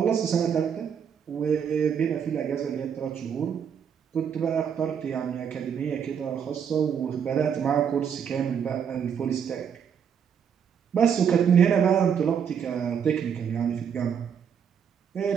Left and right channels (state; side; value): quieter; left; 7.6 dB